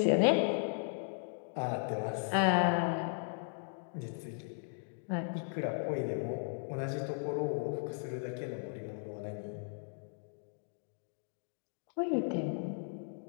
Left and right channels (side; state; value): right; silent; digital silence